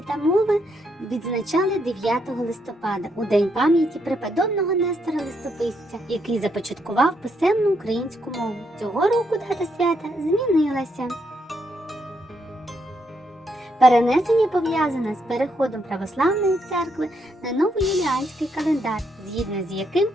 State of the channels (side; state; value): both; normal; correlation 0.77